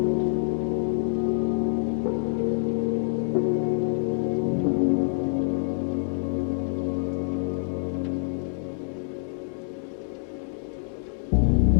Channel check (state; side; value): silent; right; digital silence